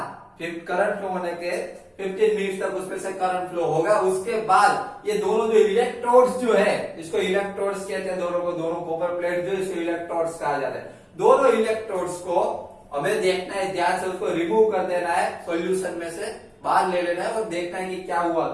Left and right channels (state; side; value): identical; both; correlation 1.00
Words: करंट फ्लो होने के 15 मिनट तक उसमें से करंट फ्लो होगा। उसके बाद ये दोनों जो इलेक्ट्रोड्स जो है, इसको इलेक्ट्रोड्स कहते हैं दोनों को, दोनों कॉपर प्लेट जो इसको इलेक्ट्रोड्स कहा जाता है। दोनों इलेक्ट्रोड्स को हमें देखना है, ध्यान से उसको रिमूव कर देना है, सॉल्यूशन में से बाहर ले लेना है और देखना है कि क्या हुआ